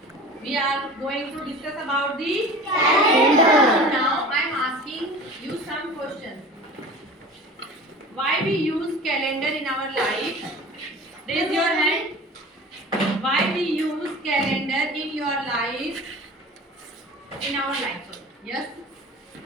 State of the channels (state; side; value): normal; both; correlation 0.38